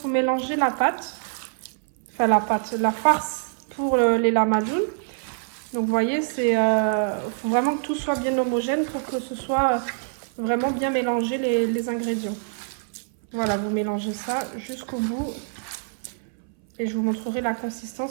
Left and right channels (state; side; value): silent; left; 60 dB below the other